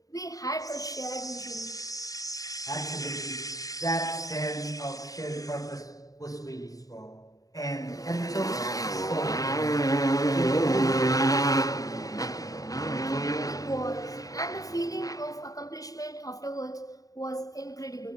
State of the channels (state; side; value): late; right; 0.17 ms